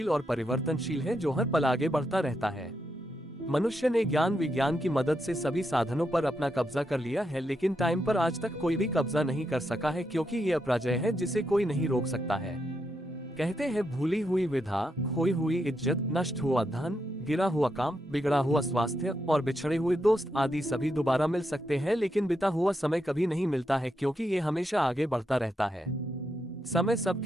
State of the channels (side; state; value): both; normal; correlation 0.82